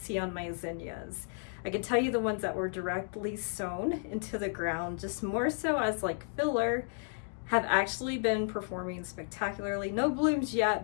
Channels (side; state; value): right; silent; 56 dB below the other